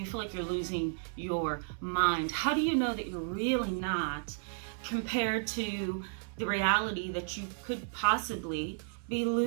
feel like you're losing your mind? How do you know that you're really not, compared to the reality that you could possibly be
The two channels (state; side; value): silent; left; 56 dB below the other